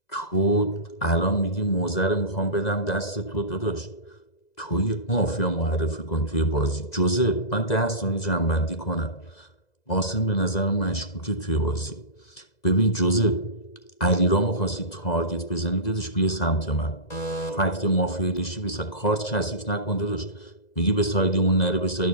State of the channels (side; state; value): right; late; 2.0 ms